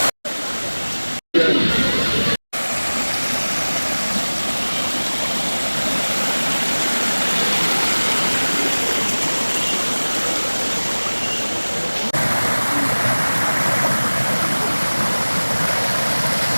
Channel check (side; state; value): both; inverted; correlation -1.00